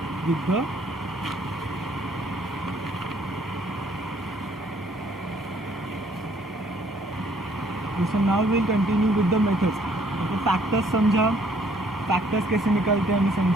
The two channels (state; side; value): normal; both; correlation 0.63